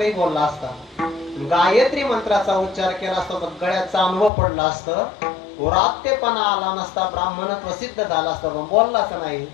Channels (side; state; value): right; drops out; at 4.3 s